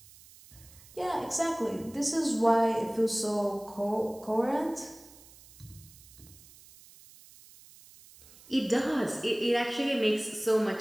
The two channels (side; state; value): right; noise; hiss, 22 dB below the sound